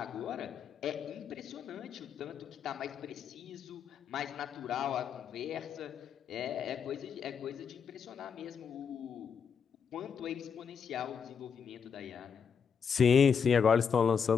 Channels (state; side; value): quieter; right; 6.6 dB